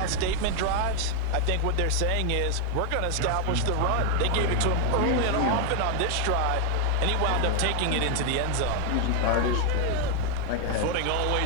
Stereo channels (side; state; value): both; different; correlation 0.00